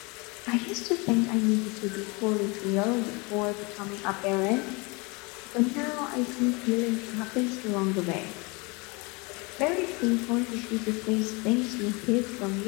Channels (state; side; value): quieter; right; 28.0 dB